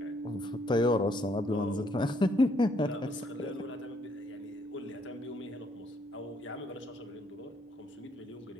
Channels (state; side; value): normal; both; correlation 0.69